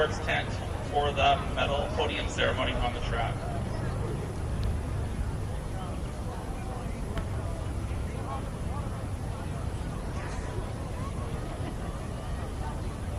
tent for the medal podium ceremony on the track.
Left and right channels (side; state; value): both; identical; correlation 1.00